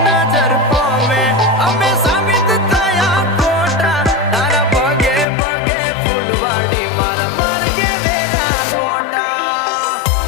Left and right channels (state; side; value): drops out; right; at 5.2 s